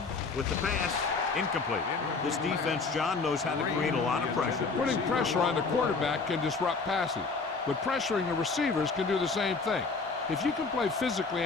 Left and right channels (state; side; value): quieter; right; 4.3 dB